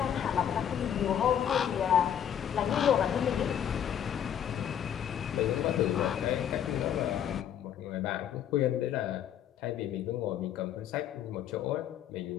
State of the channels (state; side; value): quieter; right; 9.5 dB